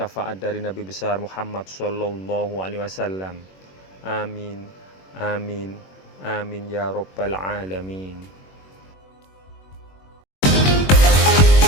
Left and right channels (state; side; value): late; right; 21 ms